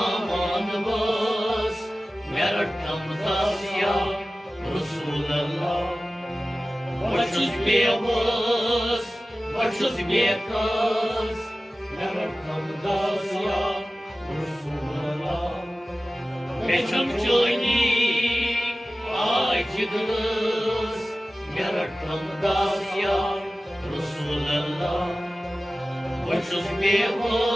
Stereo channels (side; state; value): both; normal; correlation 0.96